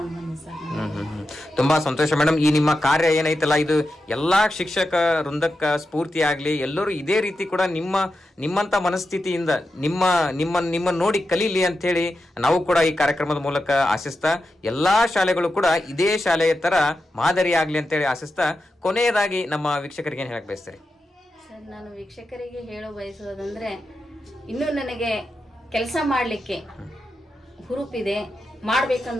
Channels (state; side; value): normal; both; correlation 0.89